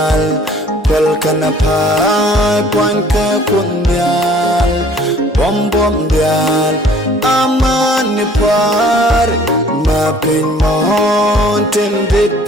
kwal kana pai poin ka kuoth nyal bom dial amani par ma pin mon tin dit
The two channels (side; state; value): both; normal; correlation 0.54